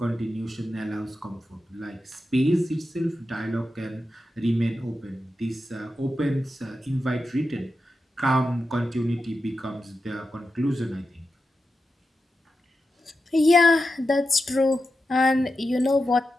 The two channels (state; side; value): normal; both; correlation 0.90